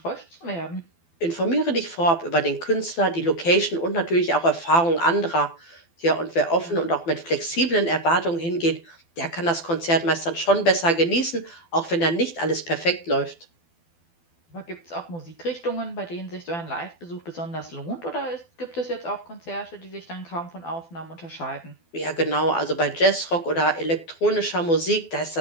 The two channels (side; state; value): right; late; 12 ms